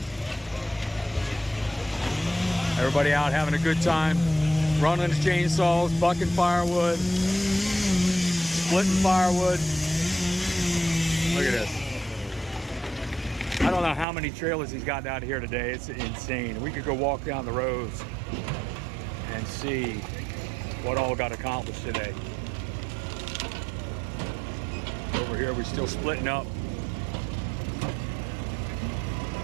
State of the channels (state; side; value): drops out; left; at 14.1 s